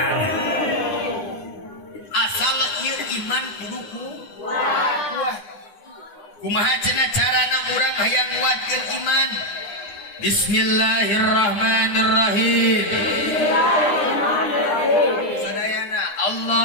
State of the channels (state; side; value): late; right; 9.8 ms